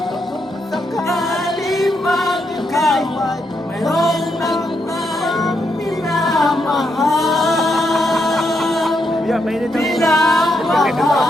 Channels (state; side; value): normal; both; correlation 0.80